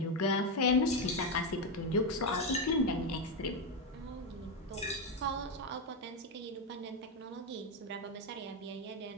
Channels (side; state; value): both; normal; correlation 0.08